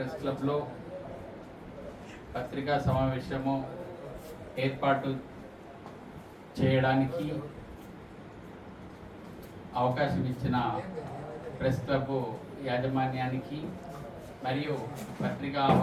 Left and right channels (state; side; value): identical; both; correlation 1.00